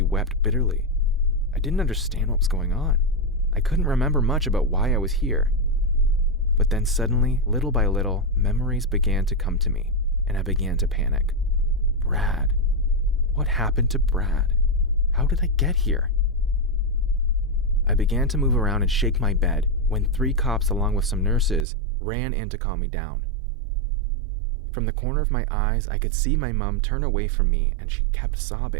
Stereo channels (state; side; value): drops out; left; at 21.7 s